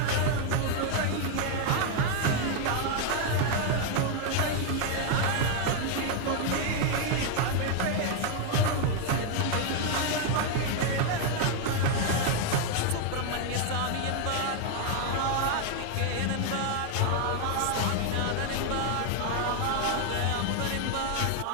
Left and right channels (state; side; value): different; both; correlation 0.00